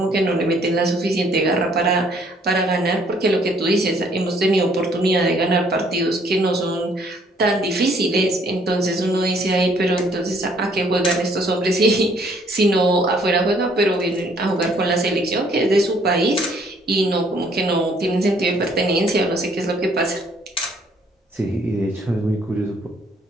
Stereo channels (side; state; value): both; normal; correlation 0.63